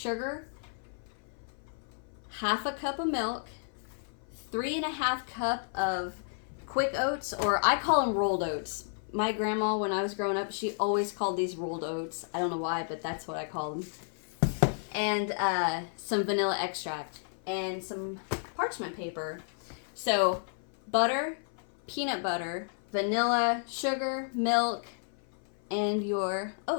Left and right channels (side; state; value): right; silent; 55 dB below the other